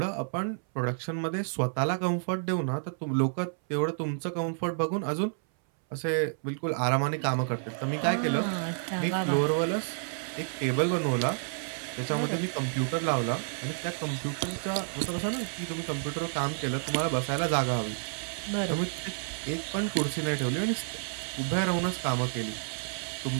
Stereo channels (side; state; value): left; silent; 58 dB below the other